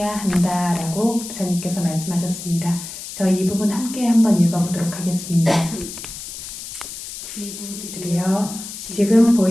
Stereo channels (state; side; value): noise; left; hiss, 10 dB below the sound